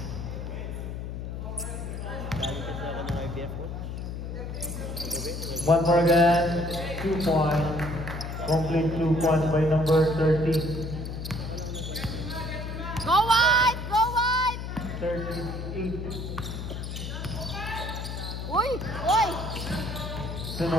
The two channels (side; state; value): left; noise; hum, 6 dB below the sound